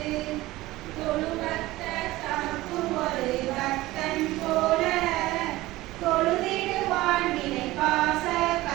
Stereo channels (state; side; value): quieter; left; 18.2 dB